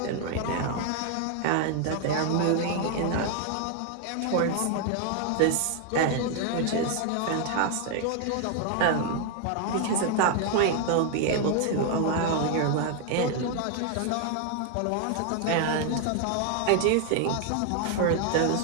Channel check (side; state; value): both; different; correlation 0.00